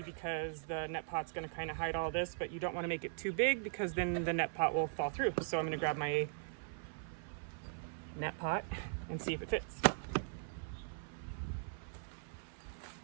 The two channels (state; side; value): silent; left; 51 dB below the other